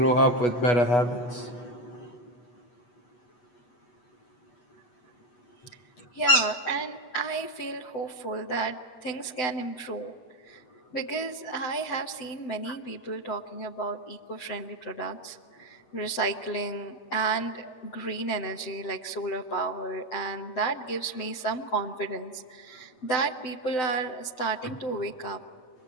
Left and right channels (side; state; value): right; late; 7.9 ms